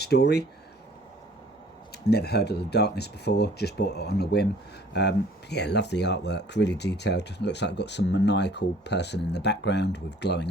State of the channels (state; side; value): normal; both; correlation 0.54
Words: Never heard of the Darkness before, just bought it on a whim. Yeah, love the artwork, really detailed. Looks like I've got some maniacal person in the background with glowing